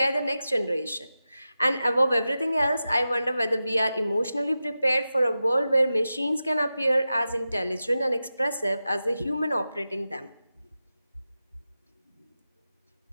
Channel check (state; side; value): inverted; both; correlation -0.92